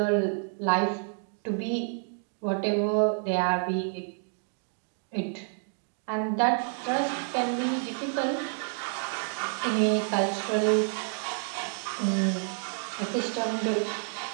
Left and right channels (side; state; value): left; silent; 57 dB below the other